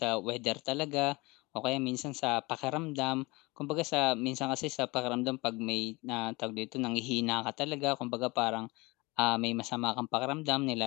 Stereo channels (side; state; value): right; quieter; 23.7 dB